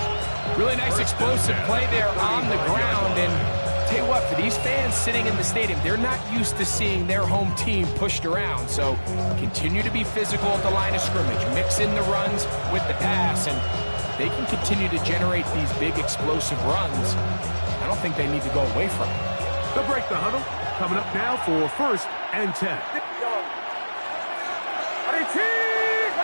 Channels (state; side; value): inverted; both; correlation -1.00